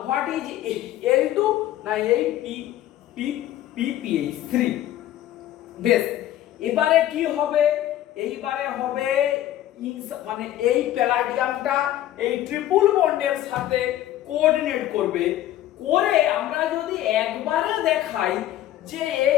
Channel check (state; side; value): quieter; right; 13.2 dB